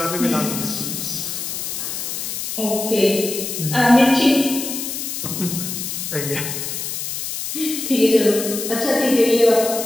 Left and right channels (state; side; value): noise; left; hiss, 5 dB below the sound